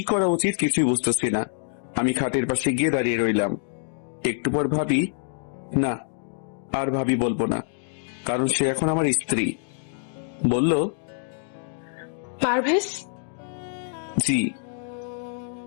করা উচিত কিছুই বুঝতেছি না। আমি খাটের পাশে গিয়ে দাঁড়িয়ে রইলাম। একটু পর ভাবি, না, আর ভাবি বলবো না, কারণ সে এখন আমার স্ত্রী। বলল, পারভেজ, জি।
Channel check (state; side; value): silent; right; digital silence